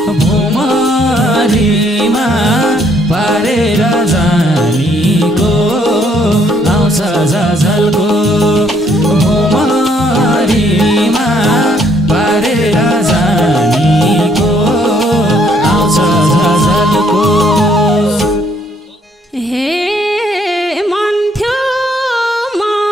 भुमरीमा पारेर जानीको आउँछ झझल्को भुमरीमा पारेर जानीको आउँछ झझल्को हे मन थियो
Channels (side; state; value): both; normal; correlation 0.67